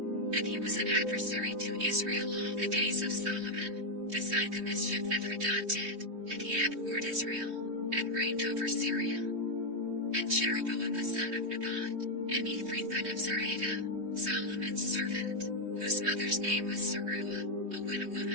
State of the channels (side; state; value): left; late; 3.2 ms